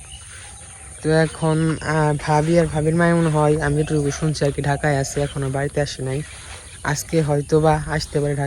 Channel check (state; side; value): identical; both; correlation 1.00